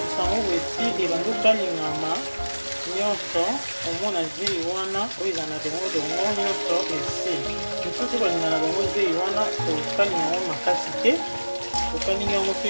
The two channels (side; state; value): both; inverted; correlation -1.00